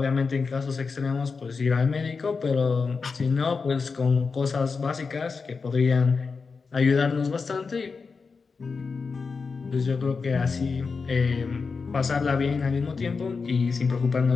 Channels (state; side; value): quieter; right; 4.8 dB